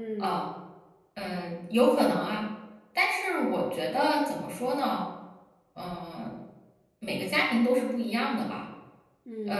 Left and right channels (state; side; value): identical; both; correlation 1.00